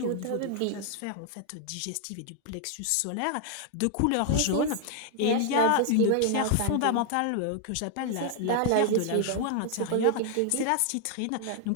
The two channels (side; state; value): both; different; correlation 0.00